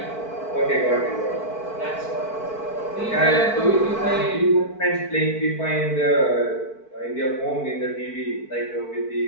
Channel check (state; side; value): late; right; 4.5 ms